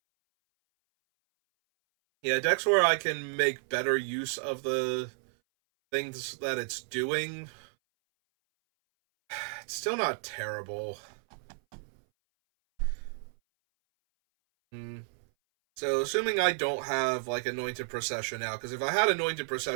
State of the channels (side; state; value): left; silent; 57 dB below the other